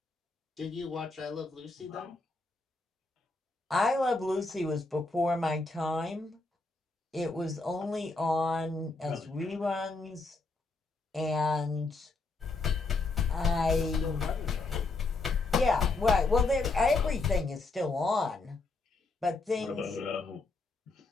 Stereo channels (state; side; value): quieter; right; 3.6 dB